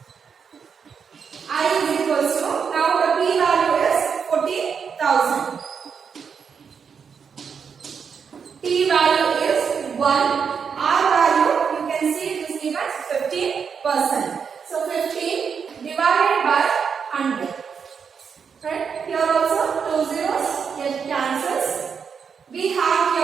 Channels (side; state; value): left; quieter; 6.5 dB